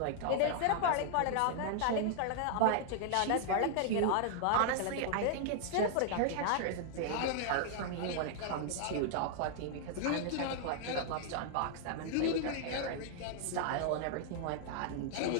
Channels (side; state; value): both; different; correlation -0.01